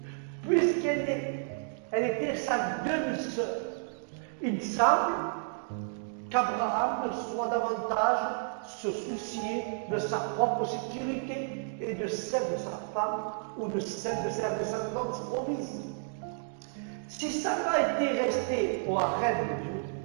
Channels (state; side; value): silent; left; digital silence